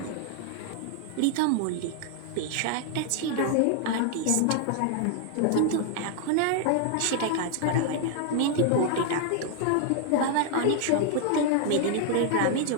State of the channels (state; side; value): different; both; correlation 0.00